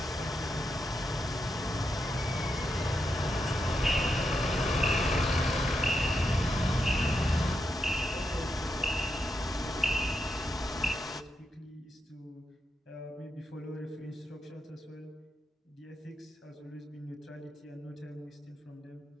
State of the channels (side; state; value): both; normal; correlation 0.84